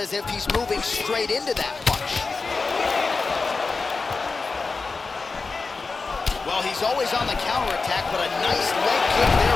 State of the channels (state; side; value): quieter; right; 4.2 dB